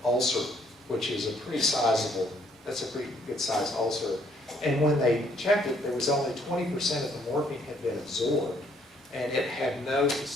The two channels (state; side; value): normal; both; correlation 0.67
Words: ulcer, which is a pretty sizable, that's a pretty good sized ulcer. And when they checked it, there was only 20% of the morphine had been absorbed, and it had no